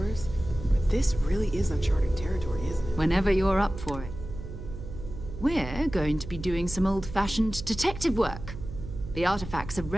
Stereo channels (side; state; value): right; noise; hum, 10 dB below the sound